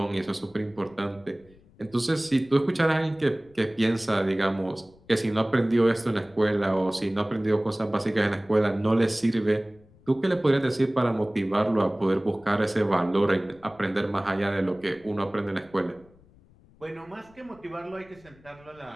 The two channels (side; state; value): left; noise; rumble, 27 dB below the sound